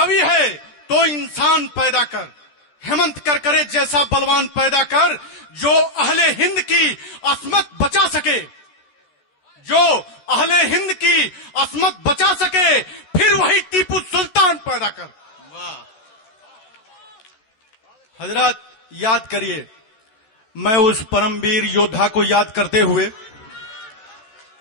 है तो इंसान पैदा कर, हेमंत करकरे जैसा बलवान पैदा कर, जो अहले हिंद की असमत बचा सके, जो अहले हिंद की असमत बचा सके, फिर वही टीपू सुल्तान पैदा कर। वाह हजरत, याद करिए, मैं उस परमवीर योद्धा को याद करते हुए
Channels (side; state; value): right; late; 14 ms